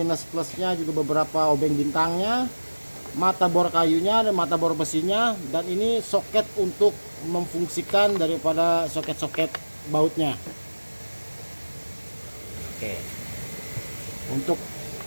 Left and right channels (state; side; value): inverted; both; correlation -1.00